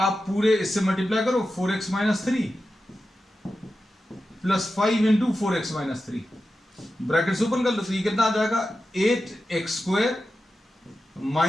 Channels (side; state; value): both; normal; correlation 0.92